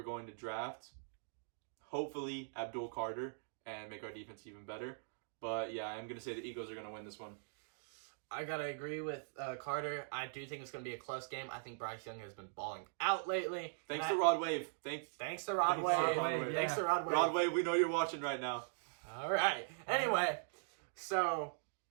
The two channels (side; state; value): left; silent; digital silence